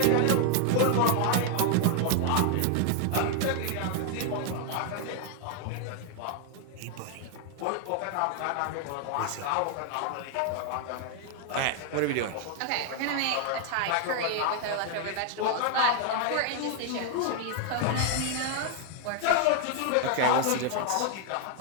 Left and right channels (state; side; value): different; both; correlation 0.00